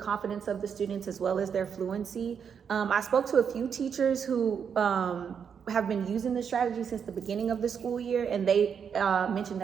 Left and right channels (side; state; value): left; quieter; 7.1 dB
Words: of the students as well as their fluency. I spoke to a few teachers who have been using this strategy since the beginning of the school year, and they mentioned